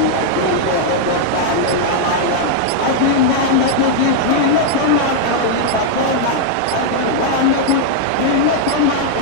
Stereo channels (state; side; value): different; both; correlation -0.01